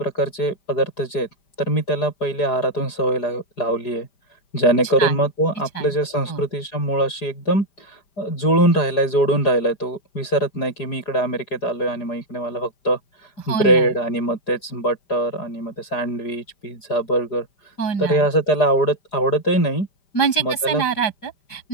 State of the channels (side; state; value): right; late; 5.1 ms